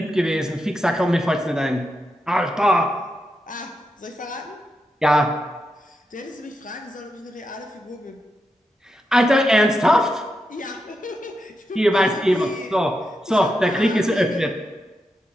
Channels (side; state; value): both; normal; correlation 0.86